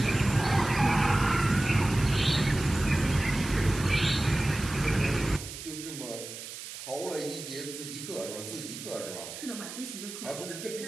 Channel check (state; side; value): noise; right; hiss, 11 dB below the sound